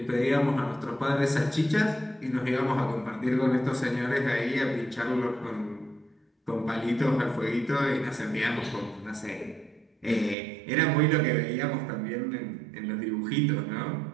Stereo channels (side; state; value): left; drops out; at 10.4 s